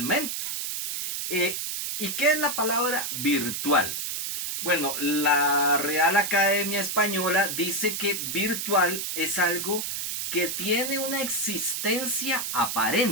Eh, ¿Y qué es la palabra virtual? Bueno, la Real Academia Española dice que virtual es algo que tiene una existencia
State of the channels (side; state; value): right; noise; hiss, 3 dB below the sound